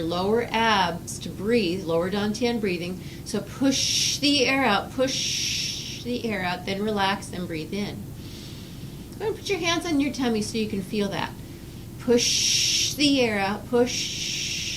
lower abs to breathe, lower dantian breathing. So push the air out, then relax and breathe in. Go ahead and put your hands on your tummy so you can feel that. Push the air out,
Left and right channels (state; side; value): identical; both; correlation 1.00